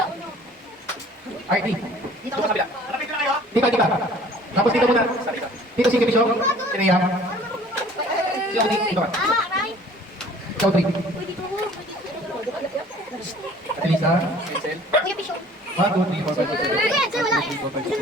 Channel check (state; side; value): normal; both; correlation 0.51